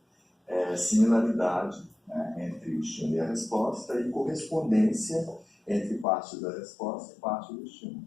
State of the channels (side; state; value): right; drops out; at 6.1 s